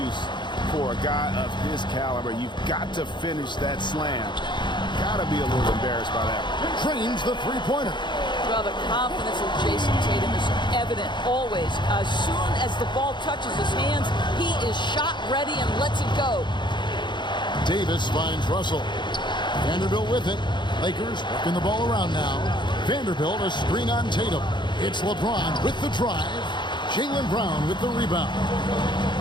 for a guy of his caliber. You've got to finish that slam. Got to be a little embarrassed by that. Trains the three-pointer. Well, the confidence of Jason Tatum is evident always. As soon as the ball touches his hands, he is shot ready and lets it go. Davis finds Russell. Vanderbilt with it. Lakers working the ball around now. Vanderbilt a screen on Tatum. It's LeBron with the drive. Jaylen Brown with the rebound.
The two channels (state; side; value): late; right; 0.22 ms